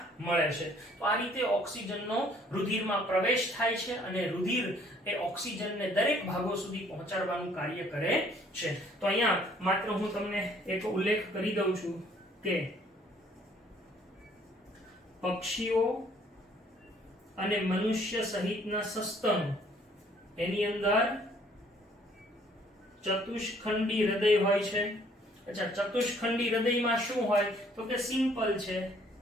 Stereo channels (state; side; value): normal; both; correlation 0.61